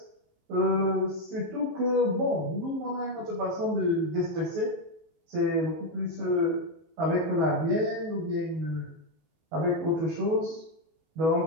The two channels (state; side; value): late; left; 19 ms